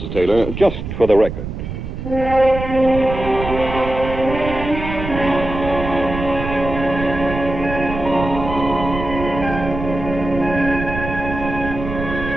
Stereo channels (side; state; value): right; noise; rumble, 7 dB below the sound